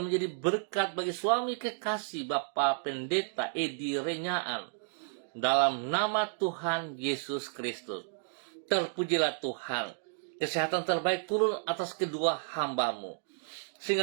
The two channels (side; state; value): left; silent; digital silence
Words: menjadi berkat bagi suami kekasih Bapak Pendeta Edi Renyaan dalam nama Tuhan Yesus Kristus. Terpujilah Tuhan. Kesehatan terbaik turun atas kedua hamba-Mu,